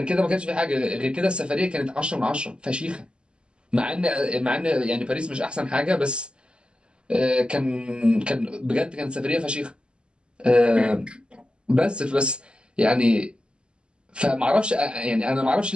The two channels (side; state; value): left; late; 0.051 ms